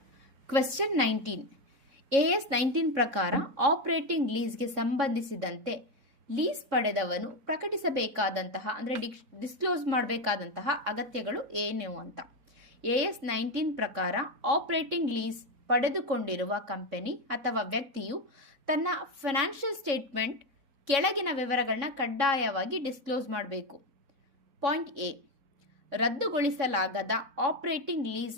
ಕ್ವೆಶ್ಚನ್ 19. AS 19 ಪ್ರಕಾರ ಆಪರೇಟಿಂಗ್ ಲೀಸ್ಗೆ ಸಂಬಂಧಿಸಿದಂತೆ ಲೀಸ್ ಪಡೆದವನು ಪ್ರಕಟಿಸಬೇಕಾದಂತಹ ಅಂದರೆ ಡಿಸ್ಕ್ಲೋಸ್ ಮಾಡಬೇಕಾದಂತಹ ಅಗತ್ಯಗಳು ಏನು ಅಂತ. AS 19 ಪ್ರಕಾರ ಆಪರೇಟಿಂಗ್ ಲೀಸ್ ಪಡೆದುಕೊಂಡಿರುವ ಕಂಪನಿ ಅಥವಾ ವ್ಯಕ್ತಿಯು ತನ್ನ ಫೈನಾನ್ಷಿಯಲ್ ಸ್ಟೇಟ್ಮೆಂಟ್ ಕೆಳಗಿನ ವಿವರಗಳನ್ನ ಕಡ್ಡಾಯವಾಗಿ ಡಿಸ್ಕ್ಲೋಸ್ ಮಾಡಬೇಕು. Point A. ರದ್ದುಗೊಳಿಸಲಾಗದ ಆಪರೇಟಿಂಗ್ ಲೀಸ್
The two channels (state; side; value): late; left; 3.6 ms